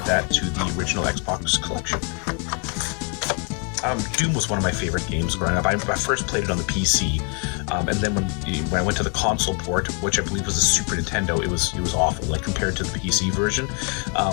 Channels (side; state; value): right; quieter; 33.9 dB